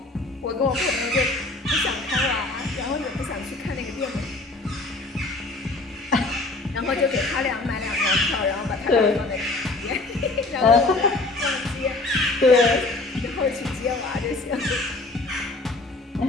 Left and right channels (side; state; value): right; quieter; 3.1 dB